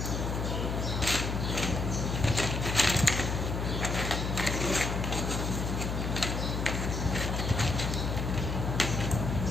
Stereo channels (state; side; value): noise; left; hum, 2 dB below the sound